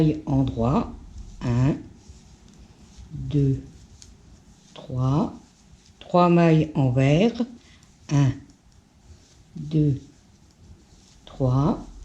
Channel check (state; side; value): identical; both; correlation 1.00